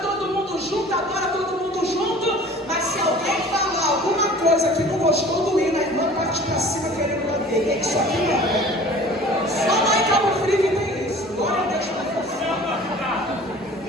mundo junto, agora todo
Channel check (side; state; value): both; normal; correlation 0.45